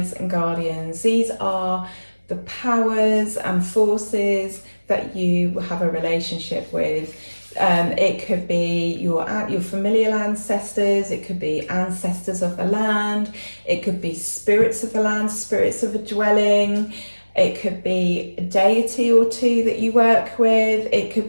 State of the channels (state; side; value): inverted; both; correlation -1.00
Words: and guardians. These are the powers and forces that you have a relationship with. It could be your familial ancestors, it could be ancestors of the land, it could be spirits of the land, spirits of a dwelling, it could be a deity or two that you work with, it